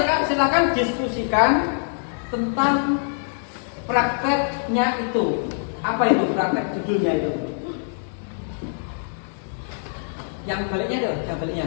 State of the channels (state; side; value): silent; right; digital silence